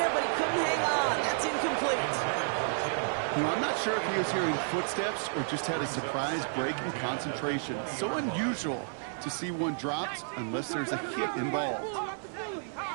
but he couldn't hang on. That's incomplete. You know, I'm not sure if he was hearing footsteps or just had a surprise break in concentration. So unusual to see one dropped unless there's a hit involved. On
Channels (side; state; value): left; silent; 55 dB below the other